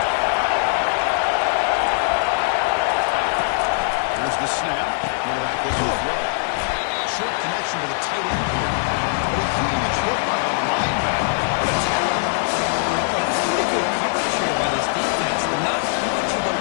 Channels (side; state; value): right; silent; digital silence